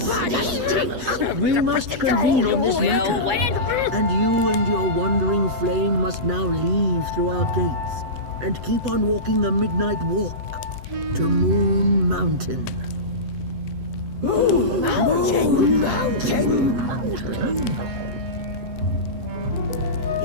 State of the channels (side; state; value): left; late; 8.0 ms